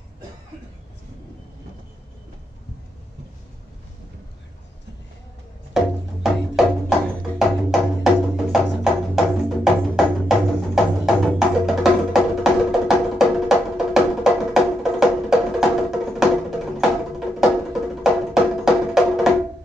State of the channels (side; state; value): both; normal; correlation 0.81